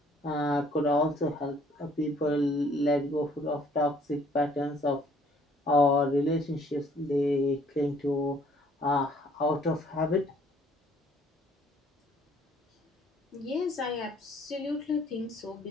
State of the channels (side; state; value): both; normal; correlation 0.60